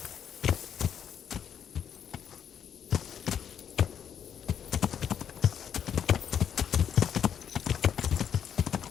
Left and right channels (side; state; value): right; quieter; 8.6 dB